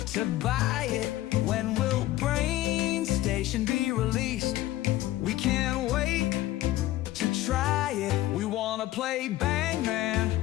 to buy it. When will Brain Station be released? We can't wait to try it. We wanna play Bang Man,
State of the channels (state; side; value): quieter; right; 15.6 dB